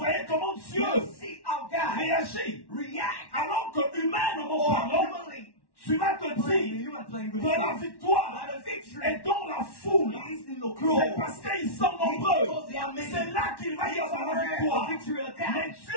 comment Dieu You see how God réagit. react. Alors que humainement Or parlant, humanly, tu vas te dire you are playing with que la victoire the victory est dans la foule. is in the C'est crowd. parce qu'ils sont nombreux. Because they are many. C'est là qu'il va y avoir la The victoire. victory will come. Mais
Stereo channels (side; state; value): right; late; 1.1 ms